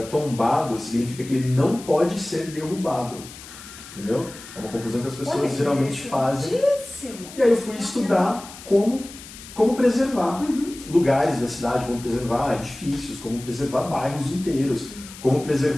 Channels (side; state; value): left; noise; hiss, 16 dB below the sound